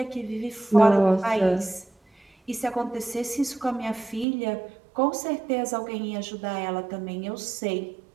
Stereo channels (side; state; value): left; drops out; at 4.2 s